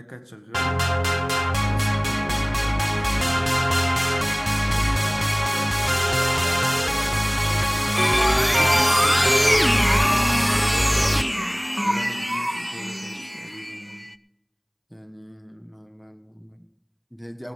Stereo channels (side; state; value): both; identical; correlation 1.00